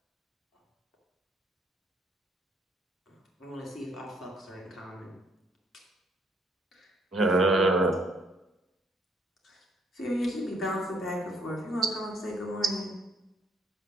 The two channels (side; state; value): both; normal; correlation 0.68